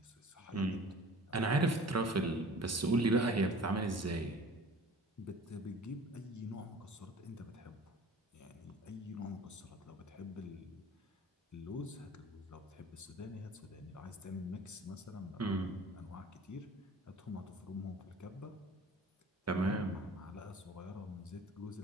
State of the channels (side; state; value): both; normal; correlation 0.46